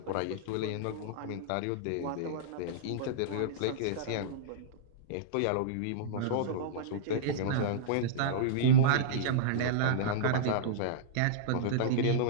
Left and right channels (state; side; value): different; both; correlation -0.03